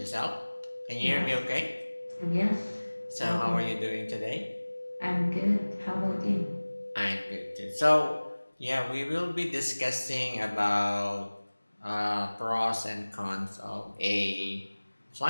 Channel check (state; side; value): inverted; both; correlation -1.00